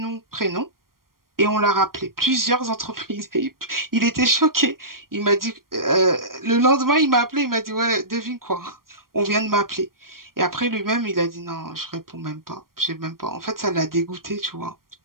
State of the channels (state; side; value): late; left; 0.92 ms